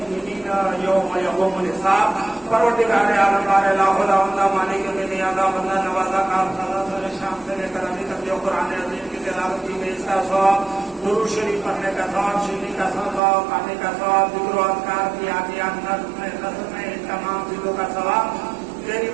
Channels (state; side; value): drops out; left; at 13.2 s